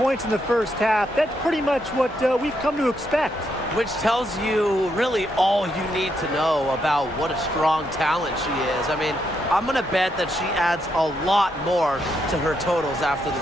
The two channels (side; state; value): both; normal; correlation 0.79